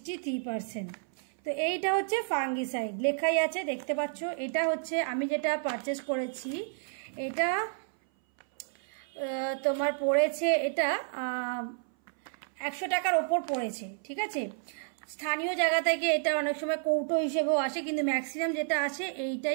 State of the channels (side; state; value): left; silent; 57 dB below the other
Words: তো এইটা হচ্ছে ফাঙ্গিসাইড, লেখাই আছে দেখতে পাচ্ছ। এটা হচ্ছে আমি যেটা পারচেস করেছি, এটা তোমার পড়েছে, এটা 100 টাকার ওপর পড়েছে, ঠিক আছে। স্থানীয় জায়গা থেকে এটা অনেক সময় কৌটো হিসেবেও আসে, কিন্তু ম্যাক্সিমাম যেটা আসে